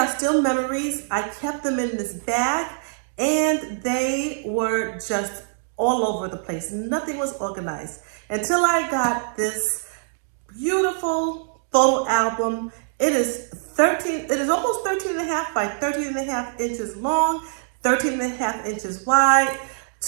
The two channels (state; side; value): silent; left; digital silence